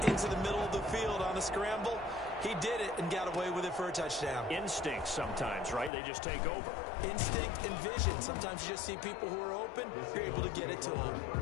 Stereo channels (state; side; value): drops out; right; at 5.9 s